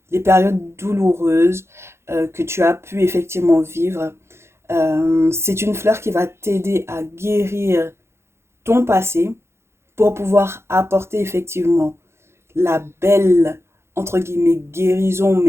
les périodes douloureuses que tu as pu effectivement vivre. C'est une fleur qui va t'aider à guérir ton passé pour pouvoir apporter effectivement la belle, entre guillemets, guérison,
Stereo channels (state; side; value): late; left; 0.13 ms